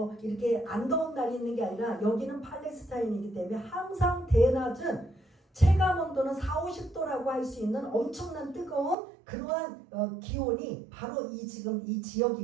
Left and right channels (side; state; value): left; drops out; at 9.0 s